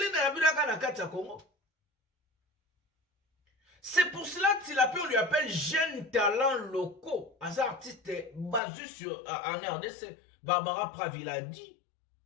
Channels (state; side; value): drops out; right; at 8.6 s